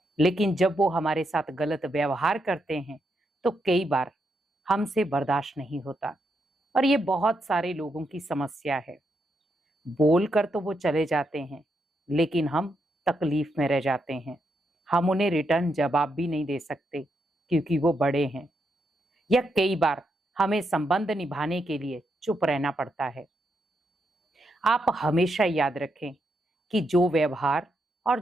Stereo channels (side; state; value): both; normal; correlation 0.81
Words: लेकिन जब वो हमारे साथ गलत व्यवहार करते हैं तो कई बार हमसे बर्दाश्त नहीं होता। और ये बहुत सारे लोगों की समस्या है। बोल कर तो वो चले जाते हैं, लेकिन हम तकलीफ में रह जाते हैं। हम उन्हें रिटर्न जवाब भी नहीं दे सकते क्योंकि वो बड़े हैं। या कई बार हमें संबंध निभाने के लिए चुप रहना पड़ता है। आप हमेशा याद रखें कि जो व्यवहार और